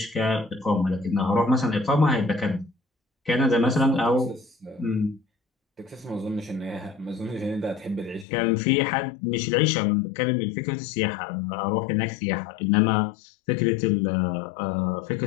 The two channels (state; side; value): drops out; right; at 8.2 s